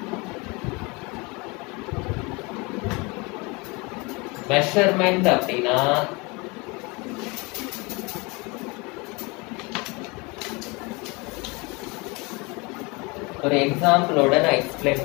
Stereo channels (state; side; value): quieter; right; 27.3 dB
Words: மெஷர்மெண்ட் அப்படின்னா ஒரு எக்ஸாம்பிளோட நான் எக்ஸ்பிளைன்